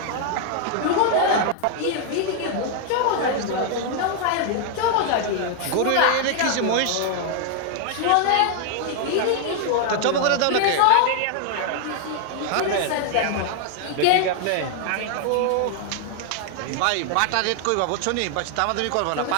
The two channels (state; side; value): different; both; correlation 0.00